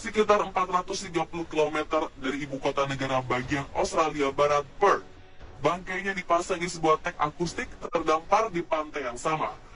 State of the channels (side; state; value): both; identical; correlation 1.00